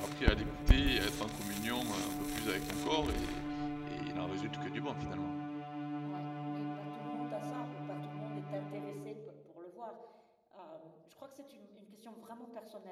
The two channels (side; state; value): both; identical; correlation 1.00